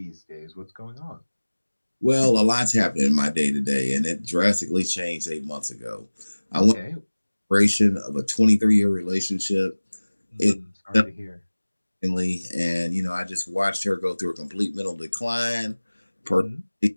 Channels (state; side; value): inverted; both; correlation -1.00